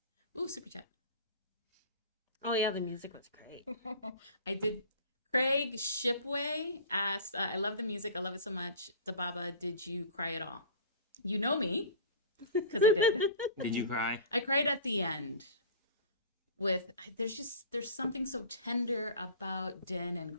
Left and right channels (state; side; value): inverted; both; correlation -0.40